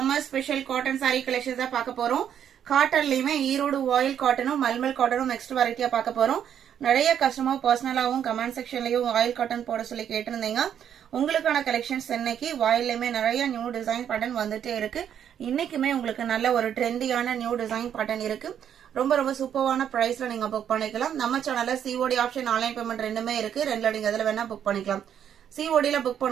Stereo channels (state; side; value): quieter; left; 9.2 dB